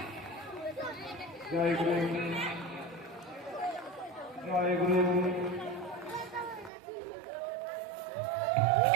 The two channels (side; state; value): left; drops out; at 6.7 s